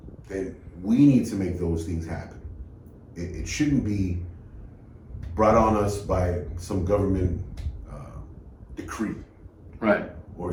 then we need to make those things happen. It shouldn't be brought on us by some government decree, right, or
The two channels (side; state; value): both; identical; correlation 1.00